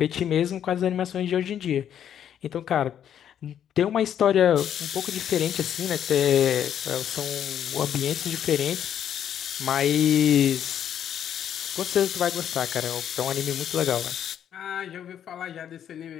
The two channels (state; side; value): quieter; right; 9.6 dB